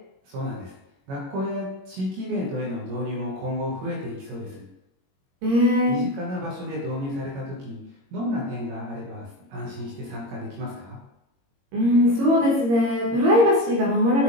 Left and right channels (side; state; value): left; late; 22 ms